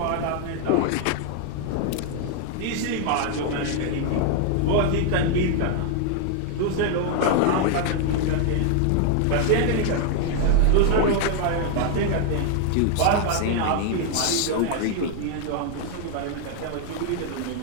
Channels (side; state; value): both; different; correlation 0.00